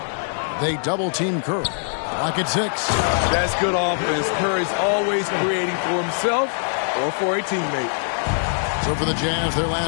They double-team Curry. Lock at 6. That's good offense. Curry's always creating for himself or for a teammate. So for the Jazz, their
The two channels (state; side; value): silent; right; digital silence